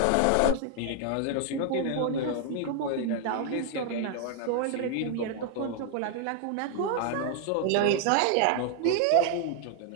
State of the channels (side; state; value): both; different; correlation 0.00